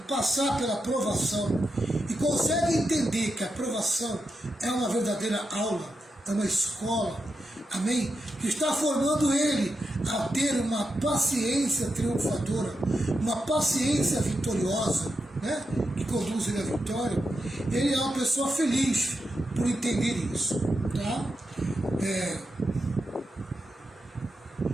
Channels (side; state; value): both; normal; correlation 0.87